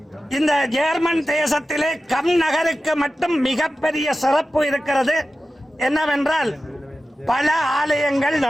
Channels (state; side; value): normal; both; correlation 0.94